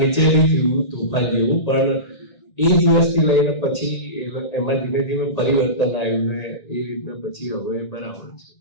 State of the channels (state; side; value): late; right; 1.8 ms